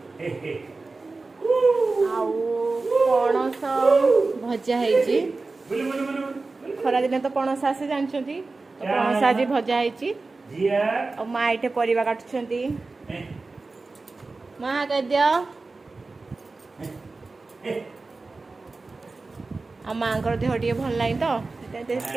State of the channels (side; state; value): left; quieter; 3.7 dB